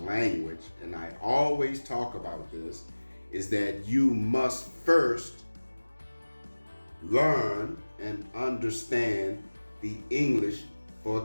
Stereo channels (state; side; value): inverted; both; correlation -1.00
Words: and I always talk about this, is that you must first learn and understand the English